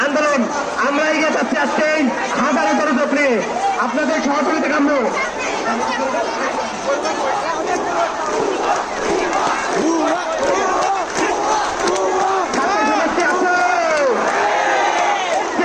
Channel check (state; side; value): identical; both; correlation 1.00